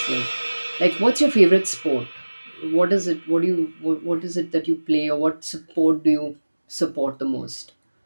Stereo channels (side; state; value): both; inverted; correlation -1.00